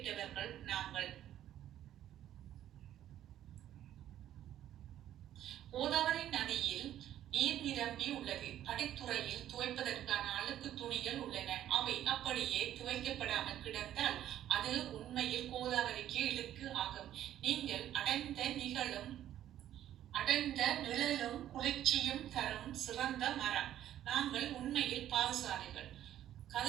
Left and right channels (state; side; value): quieter; left; 11.8 dB